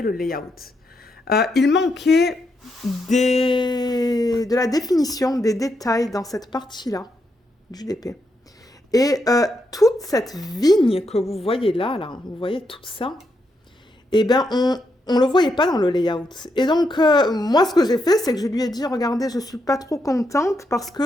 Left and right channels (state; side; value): normal; both; correlation 0.81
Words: le layout. Il manquait de la définition, des détails dans cette partie-là du DP. Et toute cette vigne que vous voyez là, vous voyez tout ça, eh bien, on ne le voyait pas dans le layout. Et donc, moi, ce que j'ai fait, c'est que je lui ai dit, regardez, je ne suis pas trop contente parce